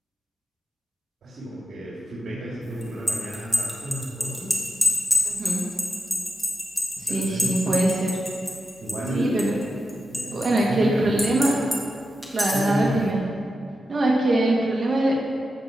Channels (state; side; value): normal; both; correlation 0.89